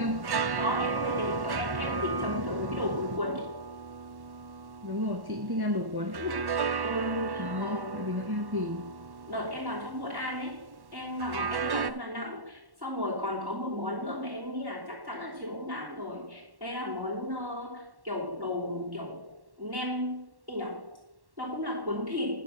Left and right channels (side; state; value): left; late; 1.1 ms